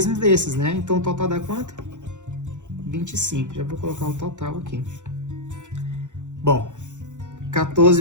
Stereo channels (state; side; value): late; left; 0.85 ms